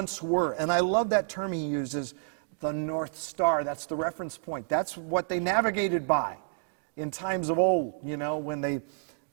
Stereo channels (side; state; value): left; silent; digital silence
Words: were. And I love that term he uses, the North Star. That's the reference point. That's what they navigated by in times of old, when they